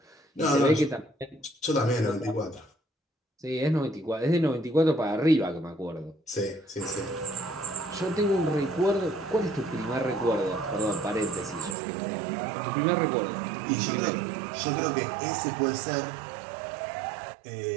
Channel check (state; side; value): drops out; left; at 11.8 s